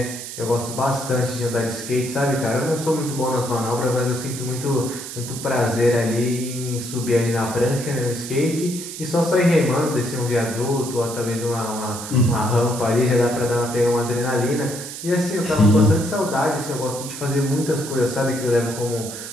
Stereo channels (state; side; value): noise; right; hiss, 9 dB below the sound